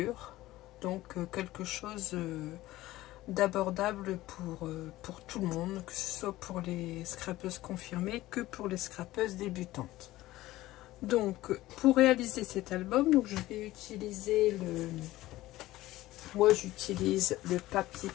Donc quelque chose d'abordable pour tout le monde, que ce soit pour les scrapeuses confirmées que pour les scrapeuses débutantes. Donc pour réaliser cet album, donc je vais utiliser j'utilise le papier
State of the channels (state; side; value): quieter; right; 16.8 dB